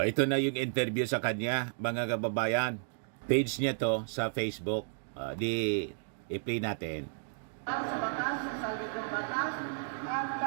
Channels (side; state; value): left; silent; digital silence